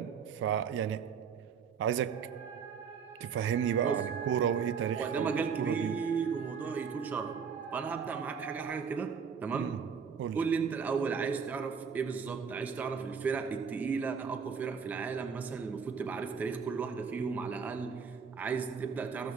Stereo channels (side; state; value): left; quieter; 6.4 dB